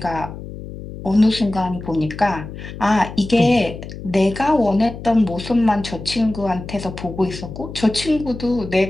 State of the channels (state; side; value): noise; left; hum, 11 dB below the sound